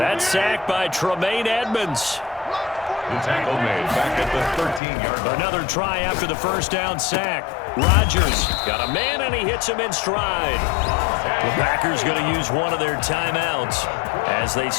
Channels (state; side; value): drops out; right; at 4.8 s